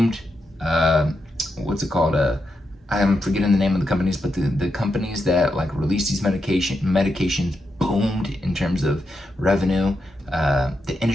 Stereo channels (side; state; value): both; normal; correlation 0.85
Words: What's it called? I'm forgetting the name of the companies, but the companies that like release these medications boomed in terms of revenue. The